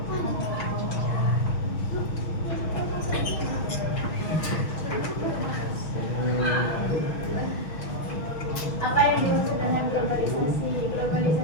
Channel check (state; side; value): late; right; 6.2 ms